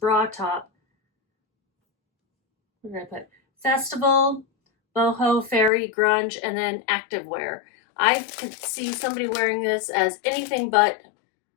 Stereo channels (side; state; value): right; drops out; at 5.7 s